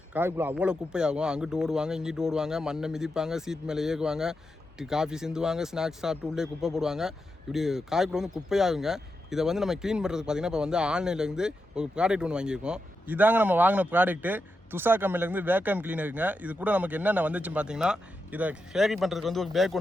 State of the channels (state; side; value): normal; both; correlation 0.87